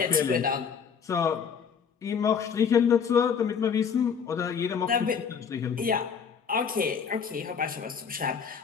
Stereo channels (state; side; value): quieter; right; 6.6 dB